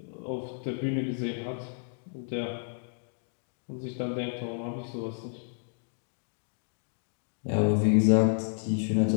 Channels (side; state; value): right; silent; digital silence